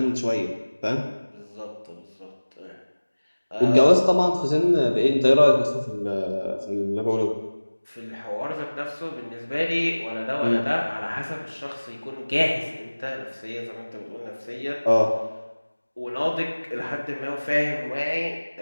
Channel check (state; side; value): inverted; both; correlation -1.00